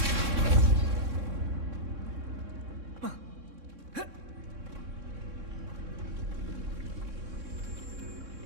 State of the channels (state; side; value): late; left; 3.6 ms